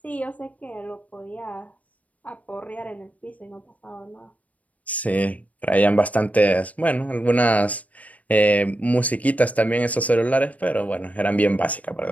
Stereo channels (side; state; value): right; late; 0.070 ms